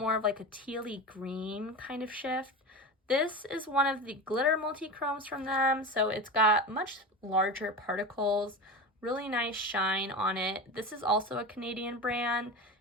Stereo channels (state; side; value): normal; both; correlation 0.26